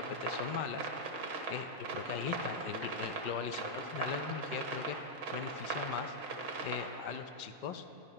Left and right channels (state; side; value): late; left; 5.2 ms